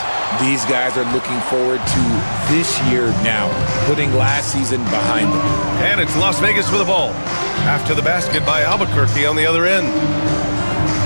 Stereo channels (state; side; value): inverted; both; correlation -1.00